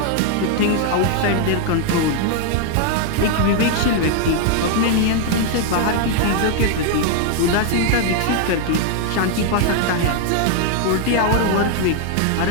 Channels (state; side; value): different; both; correlation 0.00